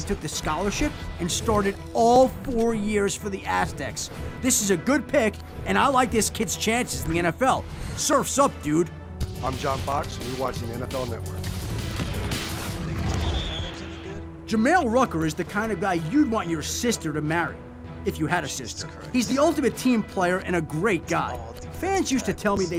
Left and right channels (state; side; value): identical; both; correlation 1.00